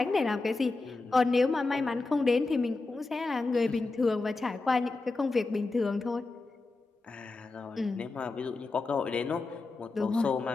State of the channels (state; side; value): quieter; right; 3.5 dB